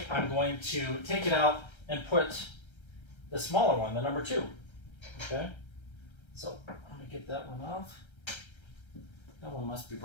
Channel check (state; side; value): late; right; 1.3 ms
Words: I'm going to take it out and put the smaller one, the number 2. Okay? So let me get that one off. That one must be